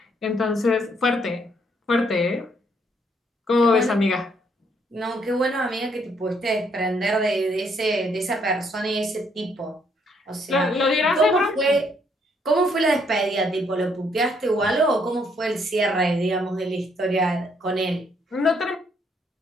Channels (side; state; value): both; normal; correlation 0.70